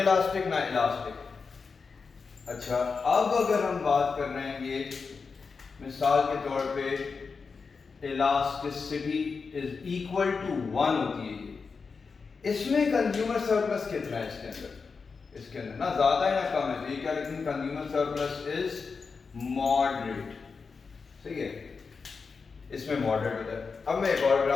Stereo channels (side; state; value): right; quieter; 5.0 dB